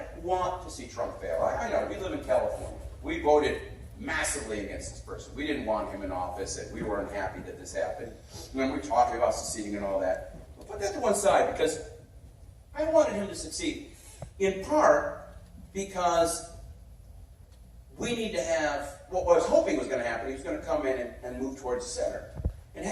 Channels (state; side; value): identical; both; correlation 1.00